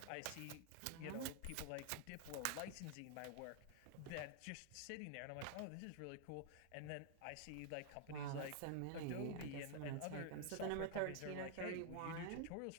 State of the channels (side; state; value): both; different; correlation 0.00